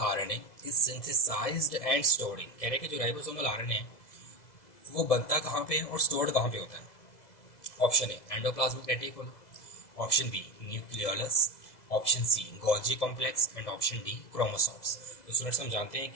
is synthesised and stored in. कह रहे हैं कि जो राइबोसोमल आरएनए है वो बनता कहाँ पे है और स्टोर्ड कहाँ पे होता है, option A endoplasmic reticulum, option B nucleolus, option C Golgi complex and option D chromosomes. तो स्टूडेंट्स हम जानते हैं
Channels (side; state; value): right; late; 2.0 ms